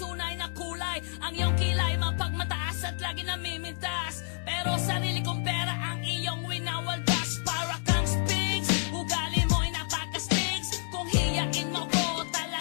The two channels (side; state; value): right; silent; 57 dB below the other